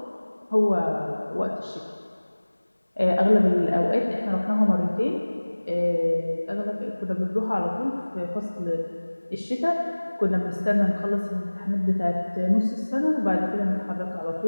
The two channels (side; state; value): both; inverted; correlation -1.00